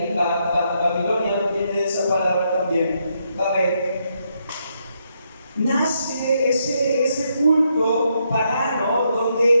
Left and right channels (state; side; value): inverted; both; correlation -0.78